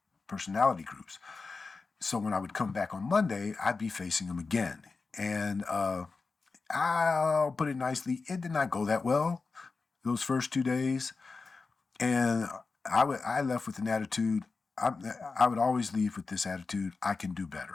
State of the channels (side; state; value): right; quieter; 4.2 dB